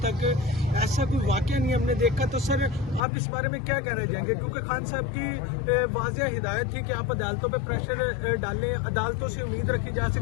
تک ایسا کوئی واقعہ نہیں ہم نے دیکھا، تو سر آپ اس بارے میں کیا کہنا چاہیں گے؟ کیونکہ خان صاحب کی واضح ہدایت تھی کہ آپ عدالتوں پہ پریشر ڈالیں، عدالتوں سے امید رکھی جا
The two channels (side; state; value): right; drops out; at 3.0 s